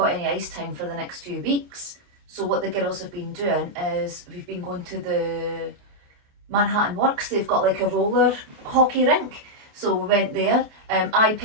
any ice time for the next few weeks. So what the girls have been doing is we've been going to the Manhattan Works. They've got like a roller hockey rink. So we went there. I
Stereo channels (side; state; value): left; late; 28 ms